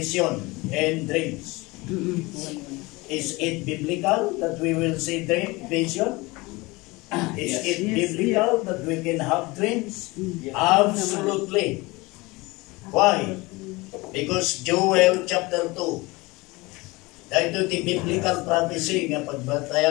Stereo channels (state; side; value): quieter; right; 23.1 dB